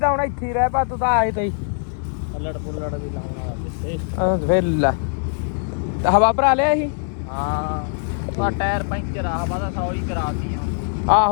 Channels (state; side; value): silent; right; 64 dB below the other